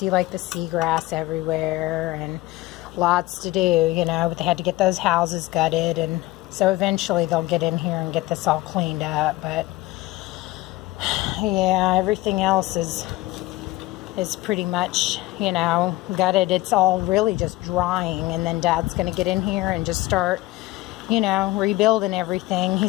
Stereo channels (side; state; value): right; quieter; 18.9 dB